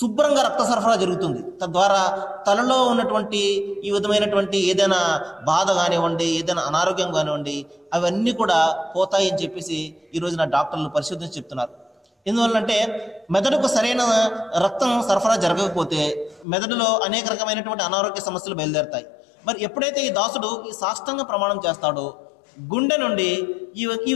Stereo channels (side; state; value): right; drops out; at 16.4 s